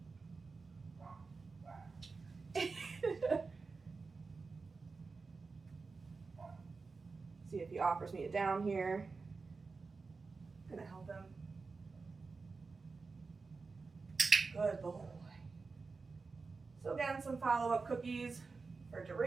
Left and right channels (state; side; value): quieter; left; 4.4 dB